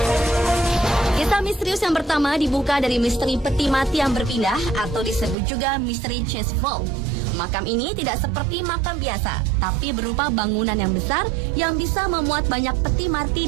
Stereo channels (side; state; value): left; drops out; at 5.4 s